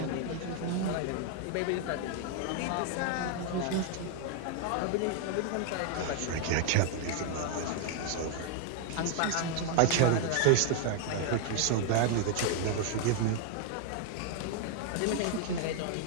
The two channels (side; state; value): both; different; correlation 0.00